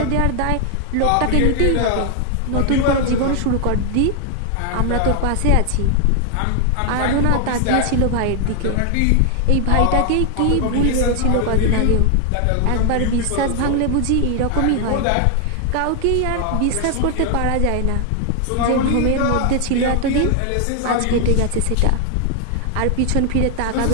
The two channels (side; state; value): both; different; correlation 0.00